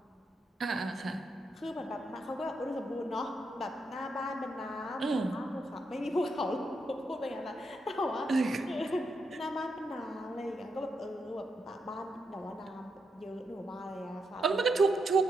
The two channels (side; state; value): both; normal; correlation 0.82